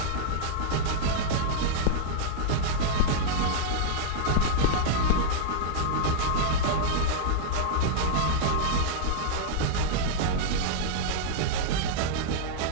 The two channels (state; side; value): different; both; correlation -0.02